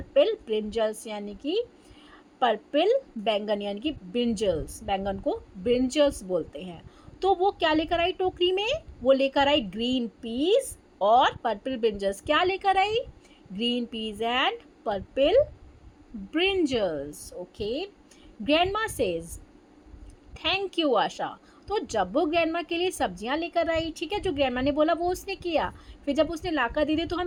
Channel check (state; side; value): identical; both; correlation 1.00